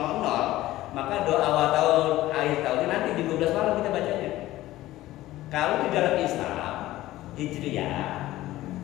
maka doa awal tahun akhir tahun nanti di 12 malam kita bacanya. Kalau di dalam Islam Hijriyah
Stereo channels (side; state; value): right; quieter; 16.0 dB